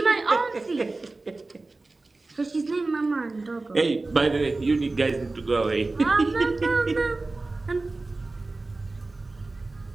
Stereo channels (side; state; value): left; quieter; 3.3 dB